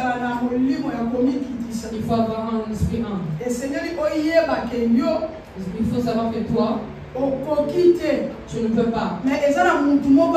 faut avoir un esprit humble. Il faut savoir que toi, tu ne peux pas. Mais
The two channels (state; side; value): identical; both; correlation 1.00